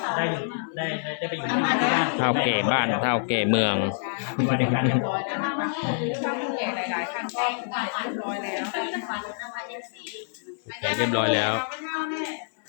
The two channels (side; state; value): right; silent; 61 dB below the other